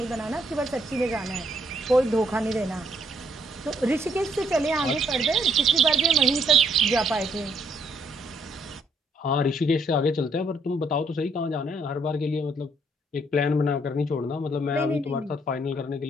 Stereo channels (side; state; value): both; normal; correlation 0.68